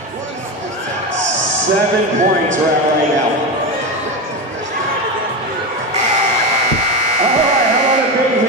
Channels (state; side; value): normal; both; correlation 0.17